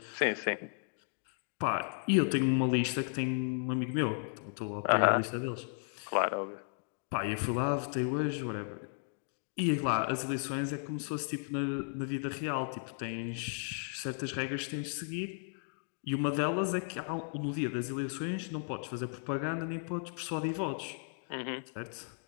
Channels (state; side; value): silent; right; 55 dB below the other